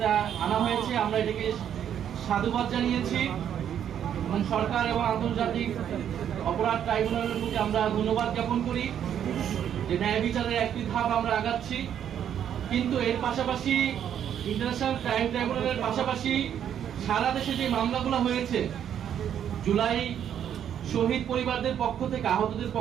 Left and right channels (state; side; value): quieter; left; 9.4 dB